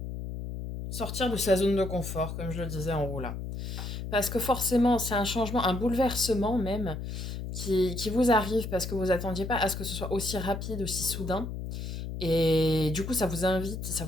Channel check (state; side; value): noise; left; hum, 6 dB below the sound